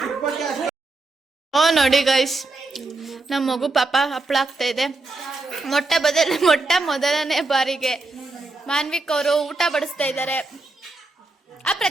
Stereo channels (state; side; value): quieter; left; 3.2 dB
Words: ನೋಡಿ ಗೈಸ್, ನಮ್ಮ ಮಗು ಪಾಪ ಹಪ್ಪಳ ಆಗ್ತಾ ಇದೆ. ಮೊಟ್ಟ ಮೊದಲನೇ ಬಾರಿಗೆ ಮಾನ್ವಿಕ್ ಅವರು ಊಟ ಬಡಿಸ್ತಾ ಇದ್ದಾರೆ. ಆ